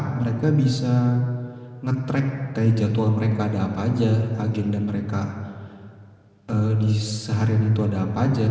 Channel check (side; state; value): both; identical; correlation 1.00